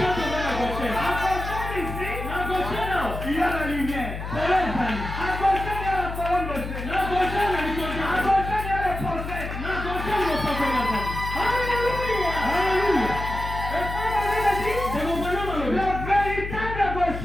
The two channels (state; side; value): noise; left; hum, 7 dB below the sound